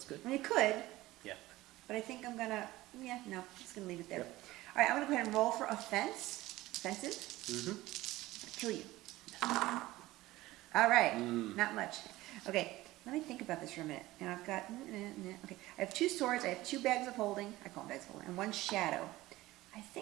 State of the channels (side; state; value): left; quieter; 17.7 dB